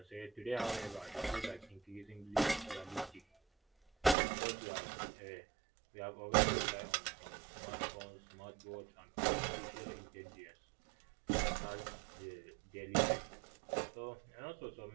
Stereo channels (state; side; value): drops out; left; at 4.2 s